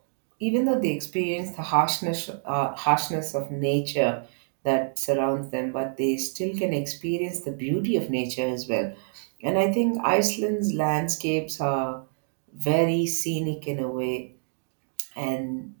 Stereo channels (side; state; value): left; silent; digital silence